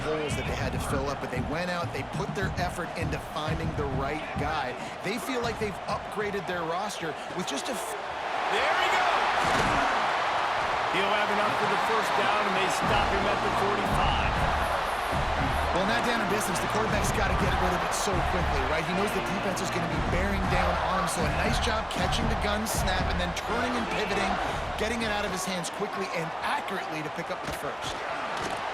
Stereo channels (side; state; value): both; identical; correlation 1.00